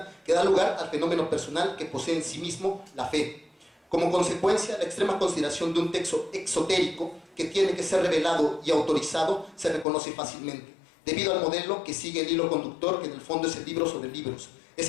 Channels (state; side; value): drops out; right; at 9.9 s